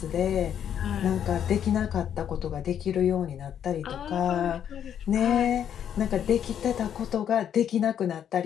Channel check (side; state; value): right; quieter; 9.3 dB